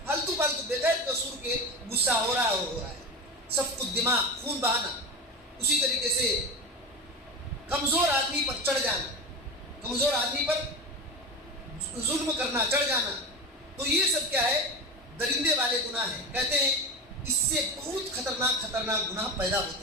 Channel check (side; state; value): both; normal; correlation 0.24